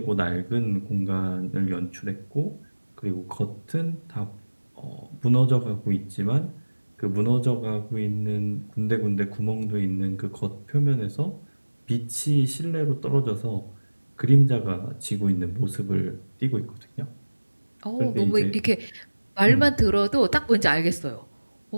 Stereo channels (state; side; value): inverted; both; correlation -1.00